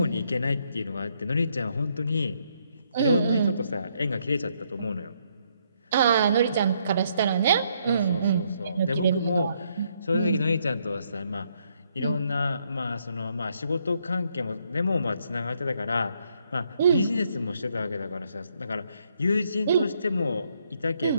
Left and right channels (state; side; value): inverted; both; correlation -0.73